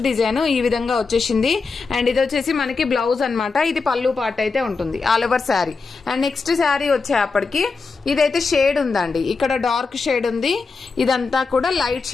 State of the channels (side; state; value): right; quieter; 4.5 dB